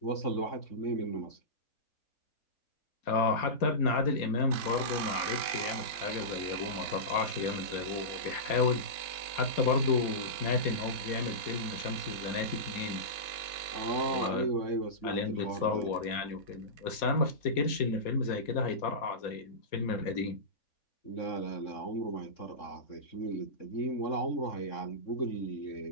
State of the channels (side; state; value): right; late; 4.2 ms